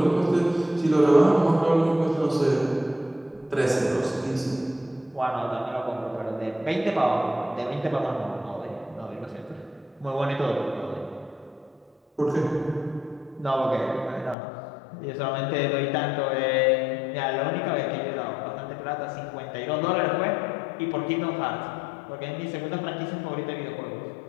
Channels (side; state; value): right; drops out; at 14.4 s